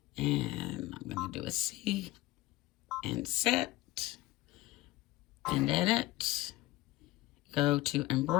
and I'm going to do a C and set and edit, go to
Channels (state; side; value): quieter; right; 17.7 dB